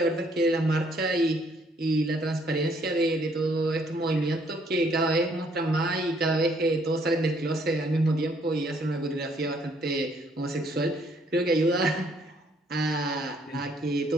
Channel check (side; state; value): both; normal; correlation 0.66